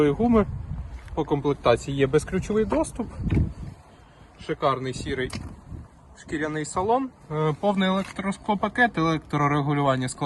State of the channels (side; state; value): both; identical; correlation 1.00